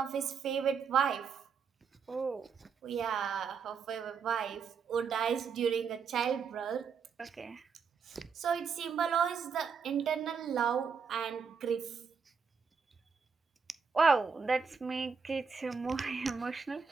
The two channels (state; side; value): quieter; left; 5.9 dB